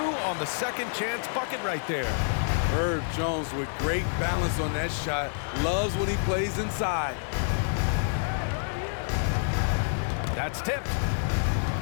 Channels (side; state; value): right; silent; digital silence